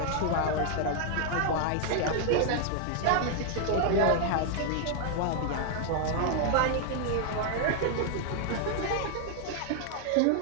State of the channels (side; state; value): both; different; correlation 0.00